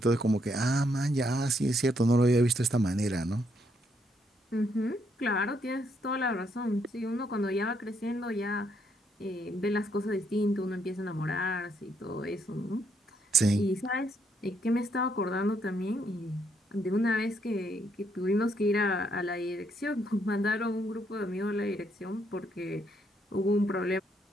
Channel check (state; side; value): normal; both; correlation 0.73